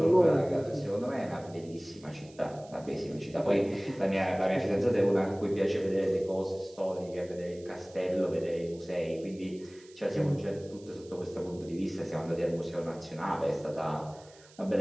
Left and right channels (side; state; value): right; noise; hiss, 25 dB below the sound